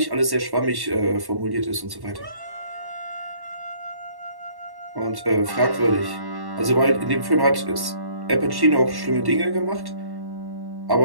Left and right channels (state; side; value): late; left; 1.1 ms